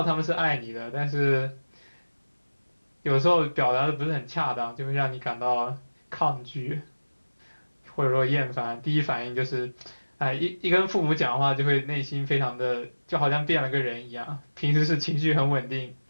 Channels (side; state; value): both; inverted; correlation -1.00